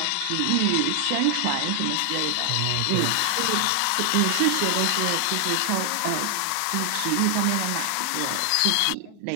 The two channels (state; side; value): different; both; correlation 0.00